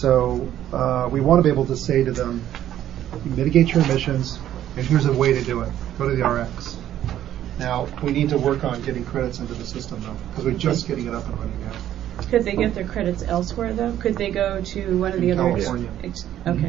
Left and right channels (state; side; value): quieter; left; 11.7 dB